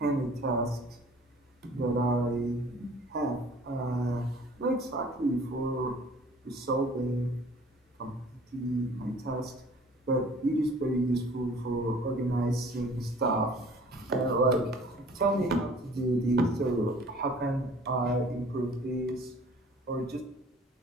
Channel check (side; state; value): both; normal; correlation 0.51